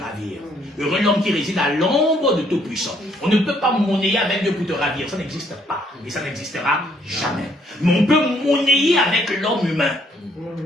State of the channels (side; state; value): both; normal; correlation 0.67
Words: Heureux l'homme qui réside à l'ombre de Tout-Puissant. On ne peut pas monnayer avec Dieu pour te ravir. Ça n'existe pas. Et ça n'existera jamais. Mais on peut monnayer avec l'homme humain.